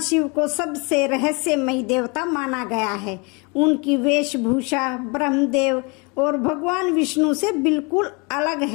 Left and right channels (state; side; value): quieter; right; 30.3 dB